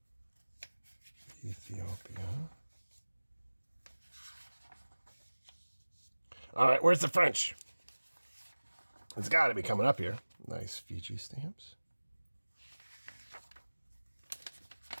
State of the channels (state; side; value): inverted; both; correlation -1.00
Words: Ethiopia. All right, where's the French? It's got to be coming up here. Nice Fiji stamps.